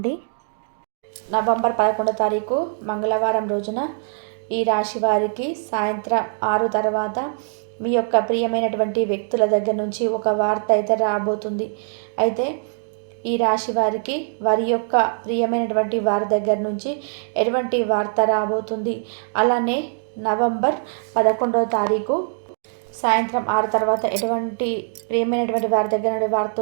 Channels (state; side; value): silent; left; digital silence